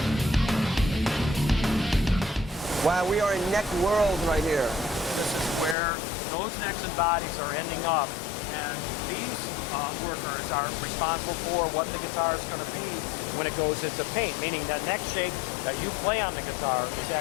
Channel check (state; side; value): drops out; right; at 5.8 s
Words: Wow, we are in neck world right here. This is where those necks and bodies are ending up, and these workers are responsible for what the guitar is going to be when it goes into paint, meaning that neck shape that you play on the guitar is